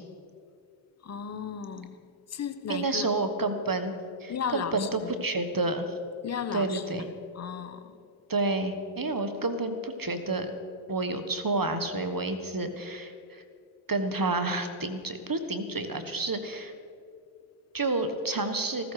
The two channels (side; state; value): both; normal; correlation -0.15